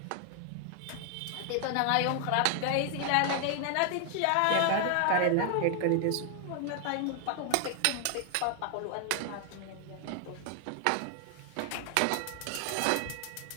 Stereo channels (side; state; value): both; different; correlation 0.00